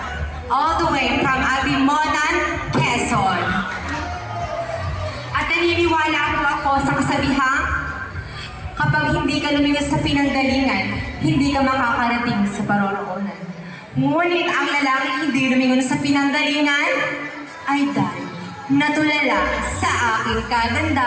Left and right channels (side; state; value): both; identical; correlation 1.00